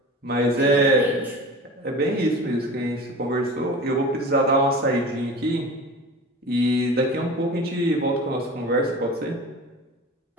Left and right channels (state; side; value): normal; both; correlation 0.36